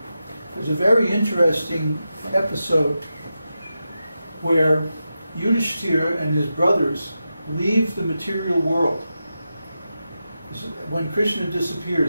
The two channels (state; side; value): inverted; both; correlation -0.90